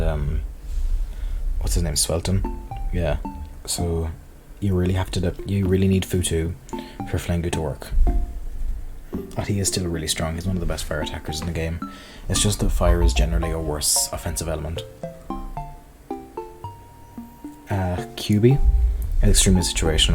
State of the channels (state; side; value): identical; both; correlation 1.00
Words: what's his name, Swelton. Yeah, so you really need Futu for Flingu to work. But he is still really strong. He's one of the best fire attackers in the game. It's just that fire is generally a worse offensive element. QB is extremely